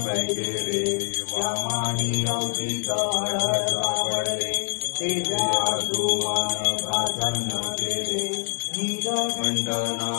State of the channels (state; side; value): silent; right; 62 dB below the other